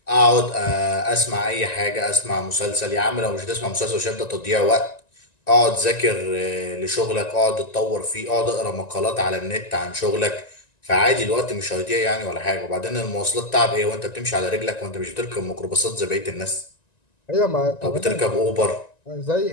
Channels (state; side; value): late; right; 1.9 ms